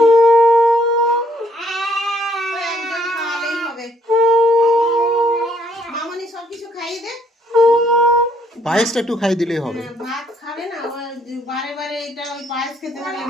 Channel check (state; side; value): normal; both; correlation 0.68